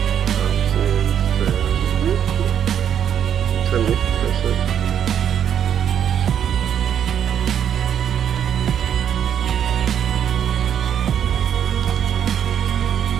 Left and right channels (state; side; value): quieter; left; 9.0 dB